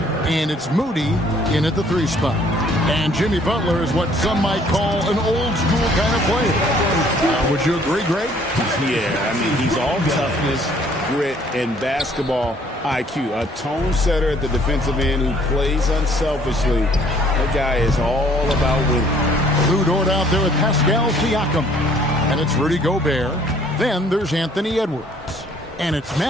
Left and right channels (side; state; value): both; normal; correlation 0.60